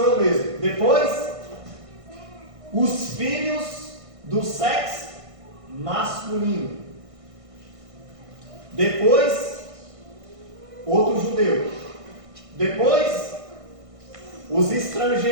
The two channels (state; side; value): late; left; 1.5 ms